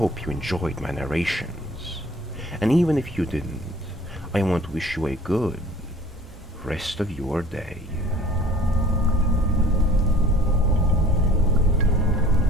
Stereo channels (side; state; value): both; normal; correlation 0.50